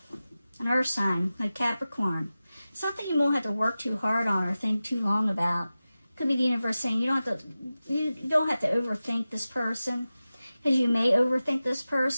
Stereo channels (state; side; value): inverted; both; correlation -0.95